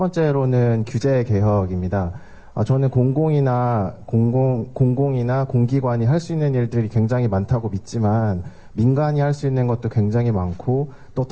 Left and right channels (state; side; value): identical; both; correlation 1.00